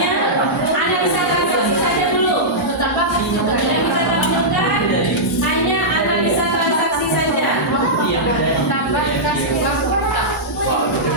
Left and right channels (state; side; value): normal; both; correlation -0.12